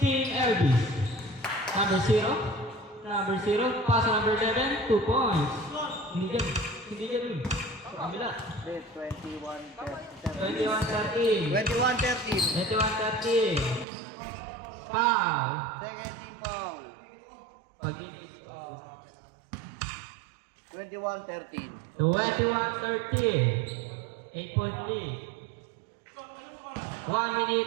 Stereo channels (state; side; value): drops out; left; at 13.9 s